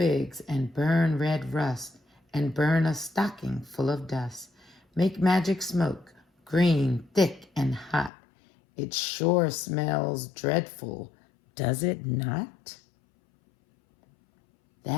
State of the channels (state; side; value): drops out; right; at 8.1 s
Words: and burn red rust, and burn a stocking full of dust. Make magic smoke, green, thick, and hot. It sure smells dreadful, does it not?